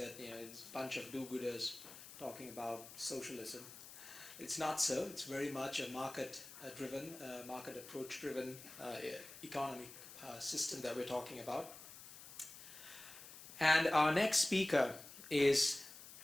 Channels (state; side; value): noise; left; hiss, 15 dB below the sound